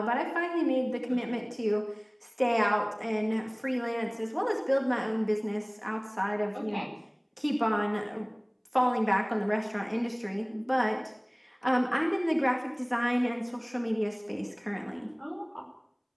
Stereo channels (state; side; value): identical; both; correlation 1.00